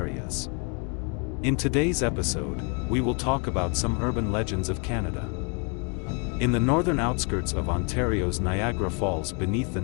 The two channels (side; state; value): right; quieter; 35.3 dB